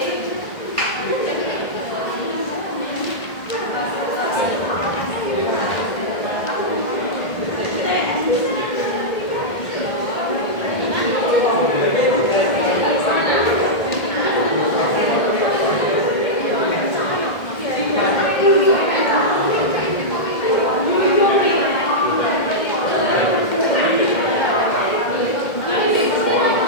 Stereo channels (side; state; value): right; late; 1.6 ms